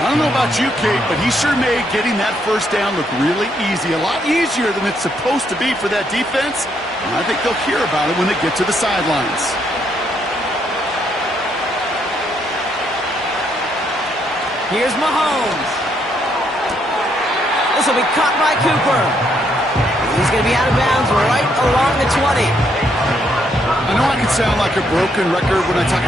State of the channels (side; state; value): both; normal; correlation 0.73